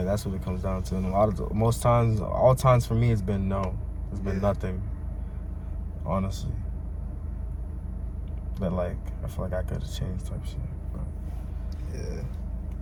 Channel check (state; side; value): identical; both; correlation 1.00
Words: that's what it comes down to. And all times for me, it's been no. It's been nothing. Honestly. But like I feel like I could have changed type shit. But,